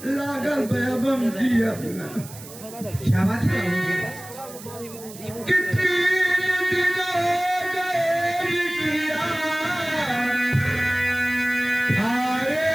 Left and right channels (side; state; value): right; noise; hiss, 16 dB below the sound